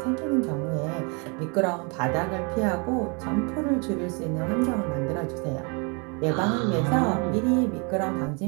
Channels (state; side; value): quieter; left; 33.4 dB